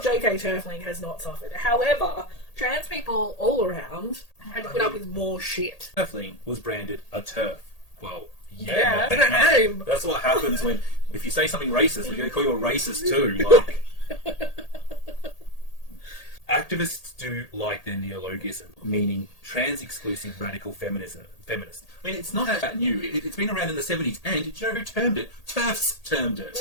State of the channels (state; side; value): late; right; 1.8 ms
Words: Turfling has not suffered. However, trans people all around had to put up with more shit. Turfling was branded a TERF. Well, yeah, I don't know. That's what happens if you say something racist, we're going to call you a racist too. Like, activists do like their neologism, meaning trans-exclusive radical feminist. I mean, it's not that new. It's been around in the 70s, and do you know who termed it? TERFs termed it.